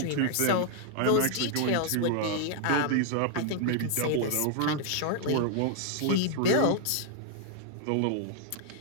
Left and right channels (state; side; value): different; both; correlation 0.00